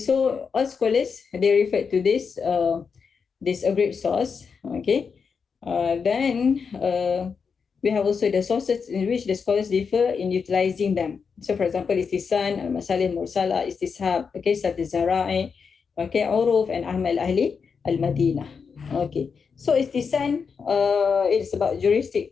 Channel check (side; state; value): right; quieter; 5.8 dB